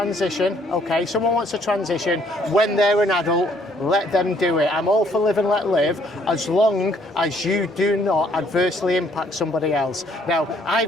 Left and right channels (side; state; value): both; normal; correlation 0.65